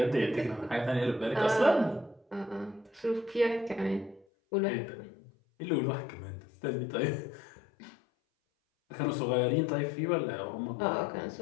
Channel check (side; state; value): right; drops out; at 4.2 s